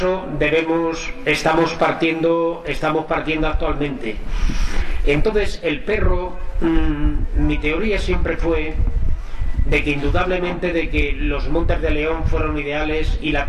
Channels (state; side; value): identical; both; correlation 1.00